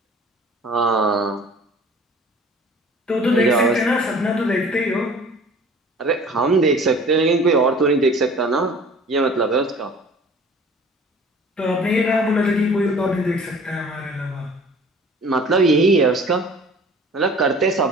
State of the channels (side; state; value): both; normal; correlation 0.47